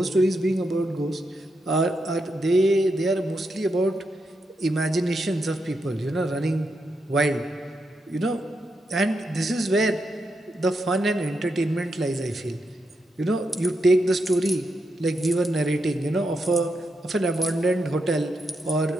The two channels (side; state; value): both; normal; correlation 0.84